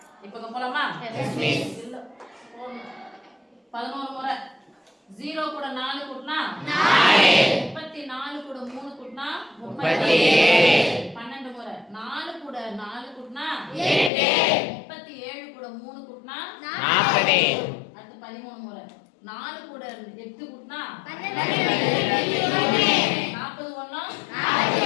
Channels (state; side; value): drops out; right; at 14.1 s